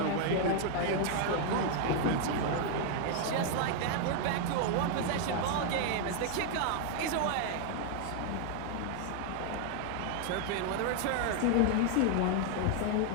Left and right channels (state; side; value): different; both; correlation 0.00